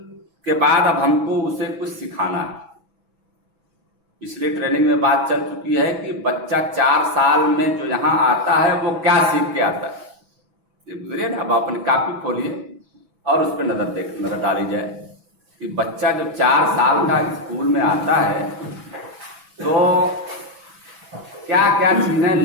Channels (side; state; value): left; late; 6.0 ms